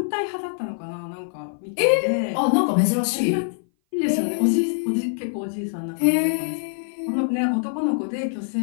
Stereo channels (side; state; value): right; silent; 57 dB below the other